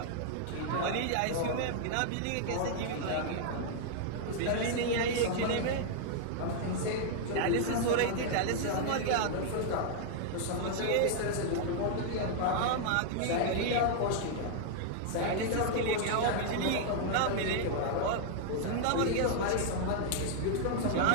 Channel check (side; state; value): both; different; correlation -0.01